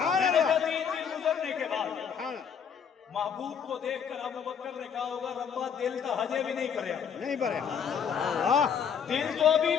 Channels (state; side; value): quieter; right; 7.3 dB